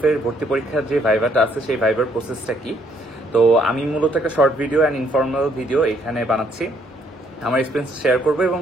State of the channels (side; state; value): both; normal; correlation 0.68